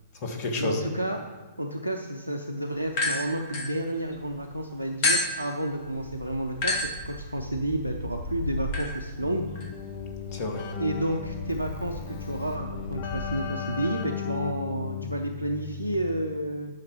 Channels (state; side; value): inverted; both; correlation -0.58